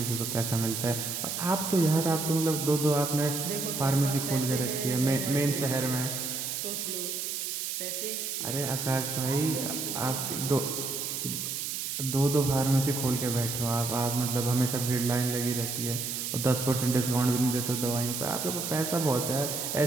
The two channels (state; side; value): noise; right; hiss, 3 dB below the sound